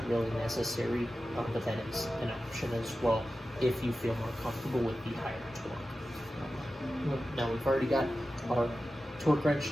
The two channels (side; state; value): both; normal; correlation 0.93